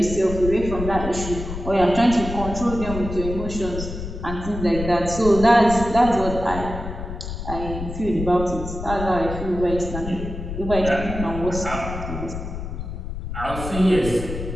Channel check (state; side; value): noise; left; rumble, 7 dB below the sound